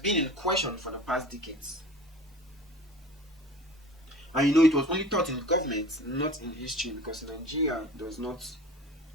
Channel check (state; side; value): normal; both; correlation 0.40